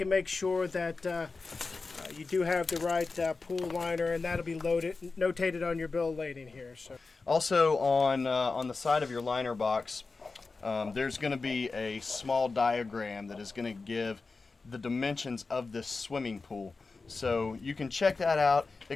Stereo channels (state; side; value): quieter; right; 4.0 dB